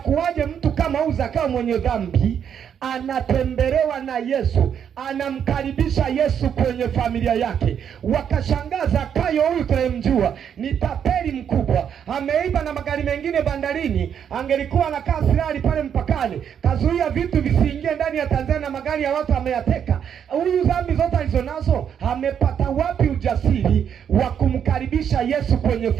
mtu kama huyu Zakayo mwenye dhambi anatembelewa na Yesu, anamkaribisha Yesu kwenye familia yake. Wakashangaa, Zakayo huyu tunayemjua ni tapeli mkubwa, ameiba na magari mengine bandarini, angelikuwa anakaa silali pale mpakani, kazuia vitu visiingie ndani ya Tanzania na magari ya watu ameyateka. Huyu dhambi zote alizonazo, amepata wapi ujasiri wa kumkaribisha Yesu kwenye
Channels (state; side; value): quieter; left; 8.4 dB